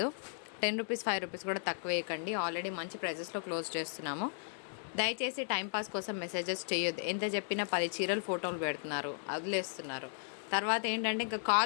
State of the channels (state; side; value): silent; right; digital silence